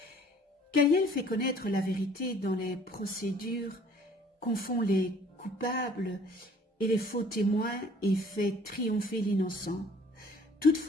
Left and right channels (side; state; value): both; normal; correlation 0.55